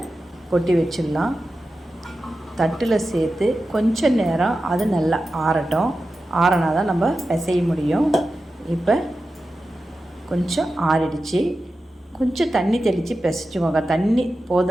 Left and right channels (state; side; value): normal; both; correlation 0.92